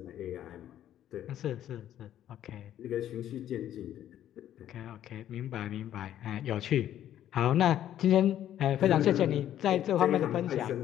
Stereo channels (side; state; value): right; quieter; 11.5 dB